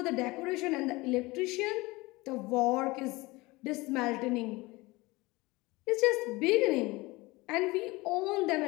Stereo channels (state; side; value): quieter; right; 22.2 dB